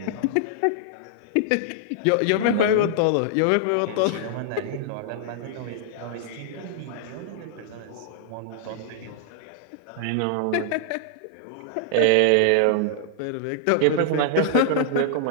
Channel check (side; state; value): both; different; correlation -0.01